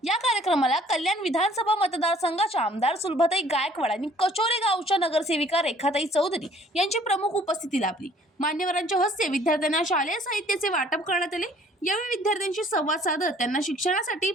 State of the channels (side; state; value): both; normal; correlation 0.56